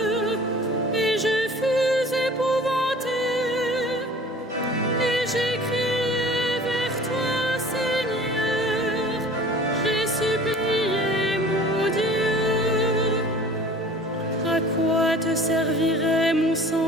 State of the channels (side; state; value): both; normal; correlation 0.45